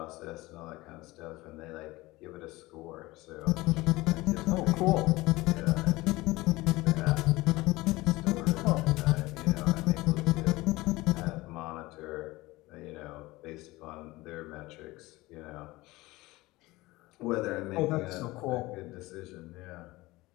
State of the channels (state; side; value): quieter; right; 20.1 dB